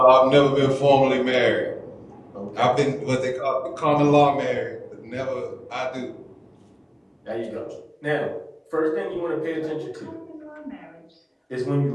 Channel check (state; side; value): identical; both; correlation 1.00